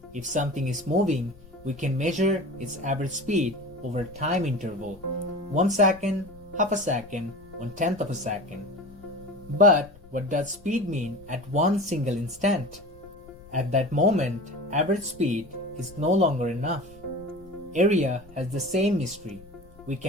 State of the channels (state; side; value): noise; left; rumble, 22 dB below the sound